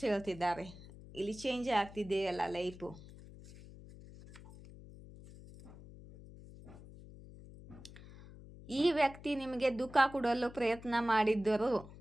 ಹೇಳ್ತಿದ್ದಾರೆ. ಇಲ್ಲಿ ಚೇಂಜ್ ಆಗ್ತಿದೆ ಅಲ್ಲ ಲೈಫು. ಈ ವ್ಯಕ್ತಿ ನಿಮಗೆ ದುಃಖ ಕೊಡಲು ಪ್ರಯತ್ನ ಮಾಡಿದ್ದರು,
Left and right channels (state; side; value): noise; left; hum, 17 dB below the sound